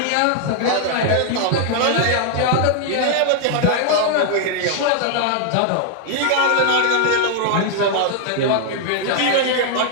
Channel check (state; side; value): different; both; correlation 0.00